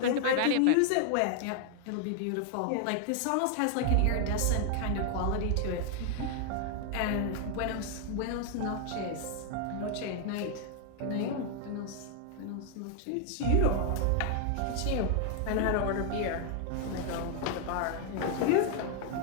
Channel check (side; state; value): both; different; correlation 0.00